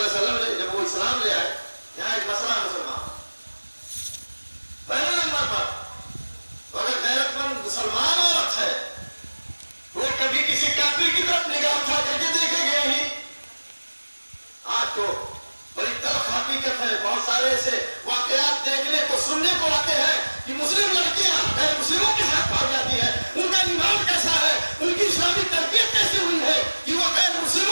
علیہ وسلم نے جب وہ اسلام لے آئے, یہاں ایک مسئلہ مسلمان پہلے نمبر پر, اگر غیرت مند مسلمان عورت ہے وہ کبھی کسی کافر کی طرف نگاہ اٹھا کر کے دیکھے گئے ہی. آج تو بڑی تلخ حقیقت ہے, بہت سارے ایسے واقعات دیکھنے کو سننے کو آتے ہیں کہ مسلم لڑکیاں غیر مسلموں کے ساتھ پائی جاتی ہیں. ان کا ایمان کیسا ہے, ان کی اسلامی تربیت کیسے ہوئی ہے کہ وہ غیر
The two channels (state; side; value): inverted; both; correlation -1.00